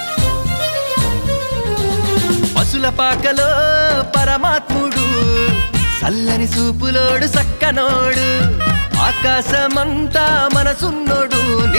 పశుల పాకలో పరమాత్ముడు చల్లని సూపులోడు సక్కనోడు ఆకాశమంతా మనసున్నోడు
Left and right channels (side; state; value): both; inverted; correlation -1.00